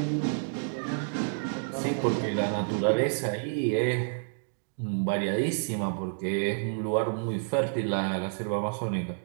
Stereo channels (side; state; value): left; silent; digital silence